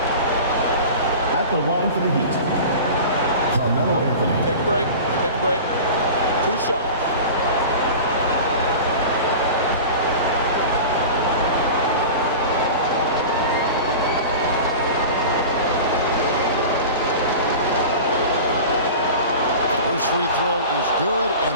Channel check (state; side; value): inverted; both; correlation -0.34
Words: the line for the Heat, Carmelo Anthony. Take a break. Take a break. 2 shots. First free throw is good,